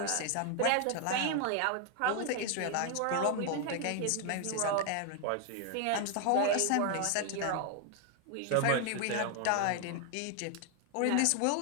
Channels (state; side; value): different; both; correlation 0.00